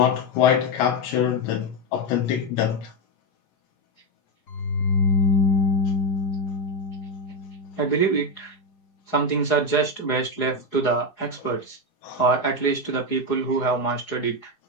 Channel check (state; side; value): late; right; 4.8 ms